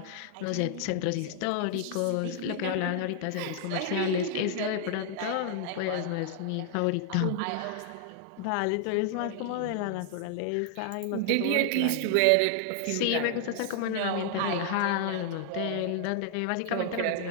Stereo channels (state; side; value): different; both; correlation 0.00